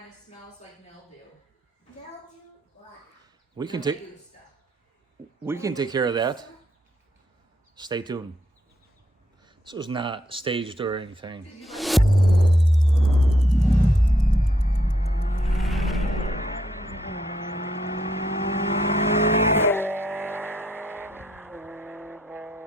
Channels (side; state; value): both; normal; correlation 0.74